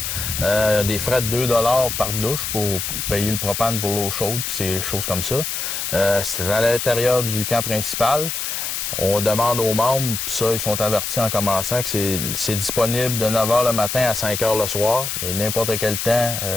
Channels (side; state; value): left; noise; hiss, 3 dB below the sound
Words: Des frais de 2 $ par douche pour payer le propane pour l'eau chaude, puis ces choses comme ça. C'est à l'intérieur du camp principal. On demande aux membres, puis ça, ils sont avertis en commençant, que c'est disponible de 9 h le matin à 5 h le soir. Et n'importe quel temps,